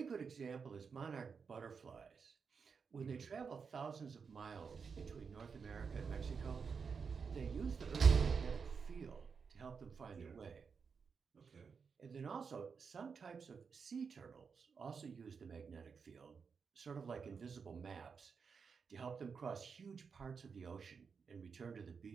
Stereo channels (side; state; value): left; quieter; 5.7 dB